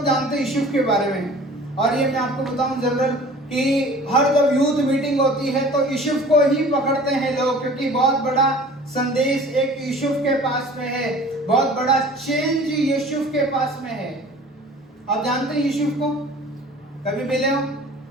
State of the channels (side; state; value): both; normal; correlation 0.45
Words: जानते हैं यूसुफ के बारे में। और ये मैं आपको बताऊं जनरल कि हर जब यूथ मीटिंग होती है तो यूसुफ को ही पकड़ते हैं लोग, क्योंकि बहुत बड़ा संदेश एक यूसुफ के पास में है, बहुत बड़ा चेंज यूसुफ के पास में है। आप जानते हैं यूसुफ को, कभी मिले हो?